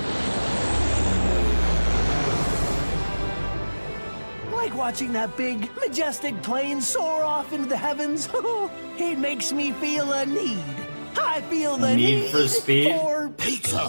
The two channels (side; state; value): both; inverted; correlation -1.00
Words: Like watching that big, majestic plane soar off into the heavens. It makes me feel a need. I feel the Need for speed? for Pizza.